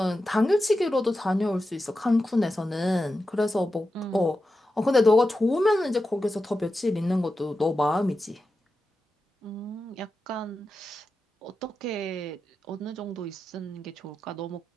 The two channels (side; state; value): both; normal; correlation 0.91